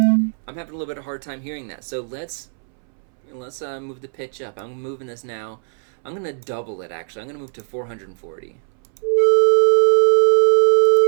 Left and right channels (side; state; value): left; silent; 66 dB below the other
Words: I'm having a little bit of a hard time hearing that. So let's move the pitch up. I'm moving this now. I'm going to double it, actually. I'm going to move to 440.